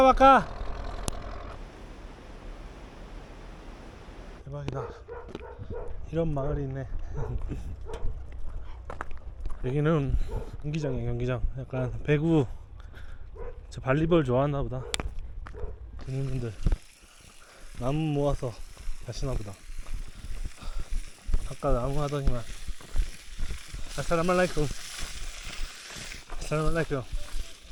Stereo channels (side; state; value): both; identical; correlation 1.00